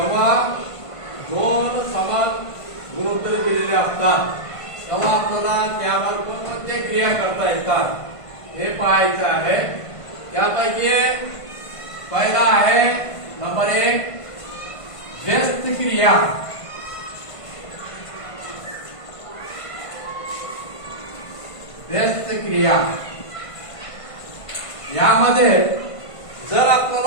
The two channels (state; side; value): late; right; 1.5 ms